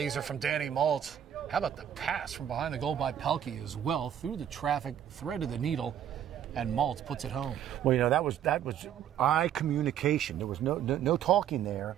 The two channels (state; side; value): quieter; left; 9.9 dB